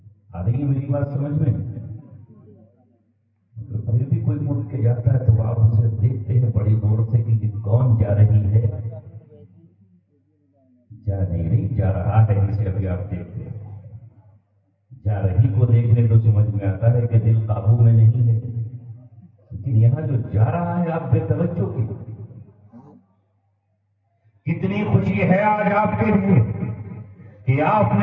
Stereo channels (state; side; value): identical; both; correlation 1.00